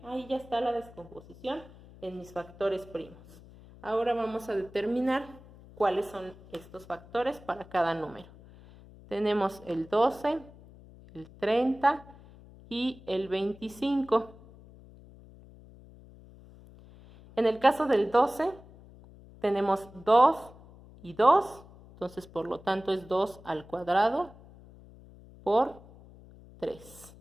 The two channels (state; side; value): noise; left; hum, 21 dB below the sound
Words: Ahí ya está la descomposición en mis factores primos. Ahora vamos a determinar cuáles son estos factores para cada número. Tenemos el 12, el 30 y el 25. En el caso del 12, tenemos 2 y 2, entonces por lo tanto es 2 al cuadrado por 3.